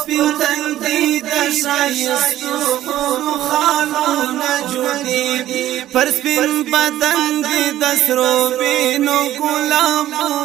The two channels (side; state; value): left; quieter; 13.3 dB